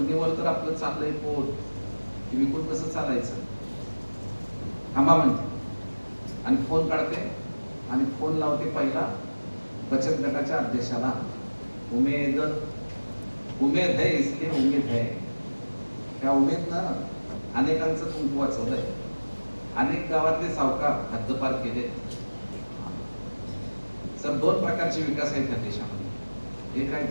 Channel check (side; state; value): both; inverted; correlation -1.00